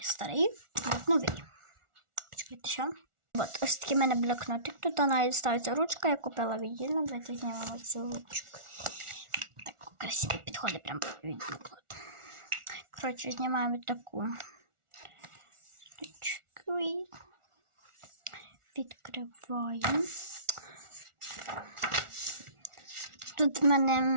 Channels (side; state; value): left; late; 1.4 ms